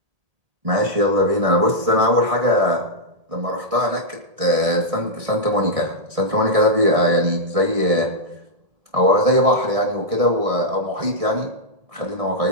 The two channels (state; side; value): late; left; 1.6 ms